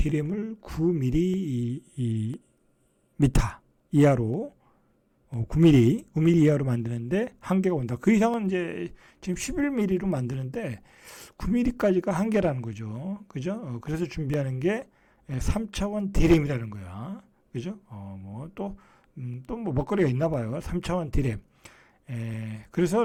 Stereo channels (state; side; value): identical; both; correlation 1.00